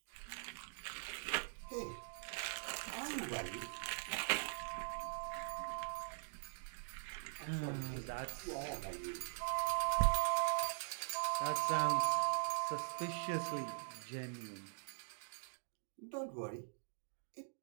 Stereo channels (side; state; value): left; silent; digital silence